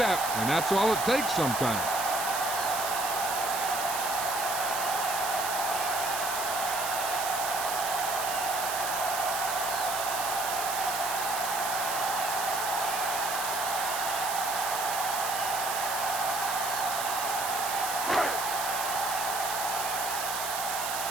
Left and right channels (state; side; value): noise; right; hiss, 4 dB below the sound